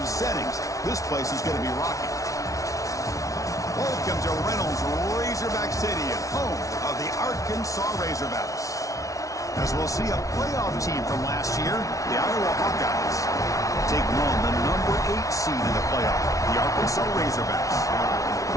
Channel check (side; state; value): right; late; 0.16 ms